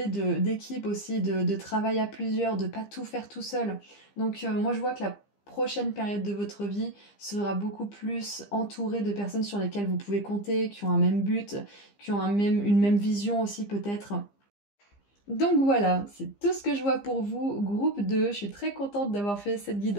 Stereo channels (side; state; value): right; late; 15 ms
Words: d'équipe aussi, de travail à plusieurs, de pas tout faire tout seul. Donc moi, je vois que la prochaine période de votre vie sera beaucoup plus entourée de personnes sur lesquelles vous pouvez compter, qui ont un même but, qui ont une même vision aussi peut-être. Donc voilà, c'est tout ce que je vois pour vous, groupe 2. Je suis très contente d'avoir fait cette